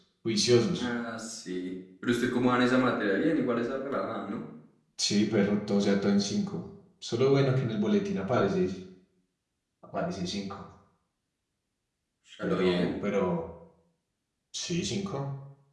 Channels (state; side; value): identical; both; correlation 1.00